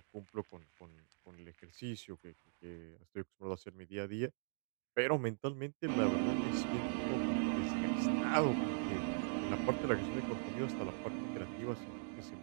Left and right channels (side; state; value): left; silent; digital silence